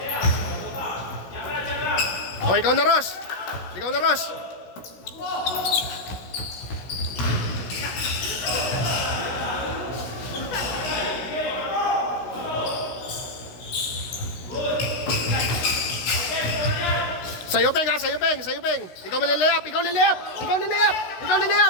O, ikaw na, Ross. Sa'yo, Peng, ha? Sa'yo, Peng. Ikaw lilayap. Ikaw lilayap.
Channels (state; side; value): late; right; 16 ms